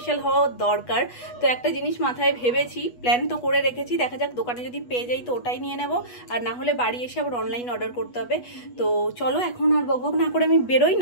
হওয়া দরকার। তো একটা জিনিস মাথায় ভেবেছি, প্ল্যান তো করে রেখেছি, দেখা যাক দোকানে যদি পেয়ে যাই তো ওটাই নিয়ে নেব, আর না হলে বাড়ি এসে আবার অনলাইন অর্ডার করতে হবে। তো চলো এখন আর বকবক না করে আমি বেরোই,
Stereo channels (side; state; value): right; late; 8.2 ms